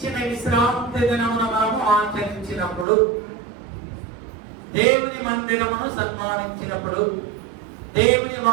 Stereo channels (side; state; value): left; drops out; at 2.9 s